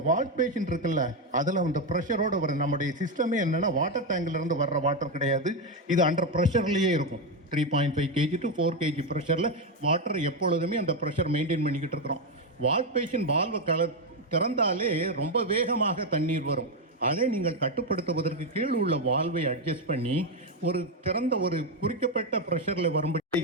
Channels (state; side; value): normal; both; correlation 0.07